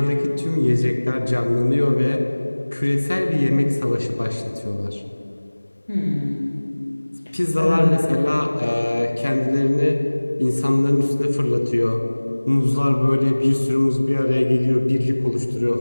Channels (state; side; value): inverted; both; correlation -1.00